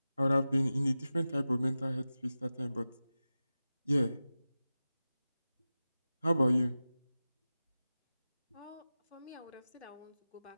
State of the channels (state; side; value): inverted; both; correlation -0.95